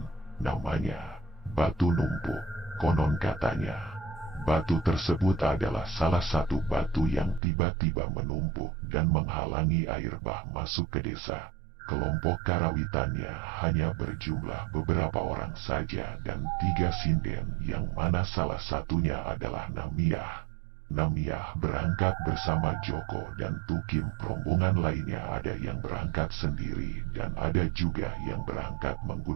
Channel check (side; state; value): left; drops out; at 7.4 s